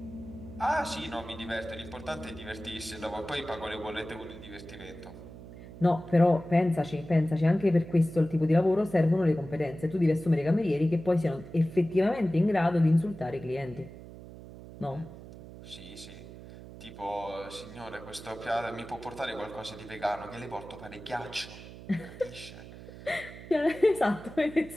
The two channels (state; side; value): noise; right; hum, 15 dB below the sound